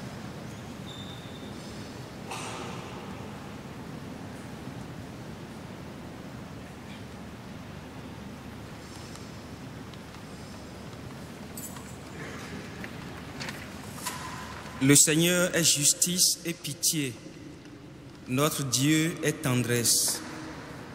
Le Seigneur est justice et pitié. Notre Dieu est tendresse.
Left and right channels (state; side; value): noise; left; rumble, 29 dB below the sound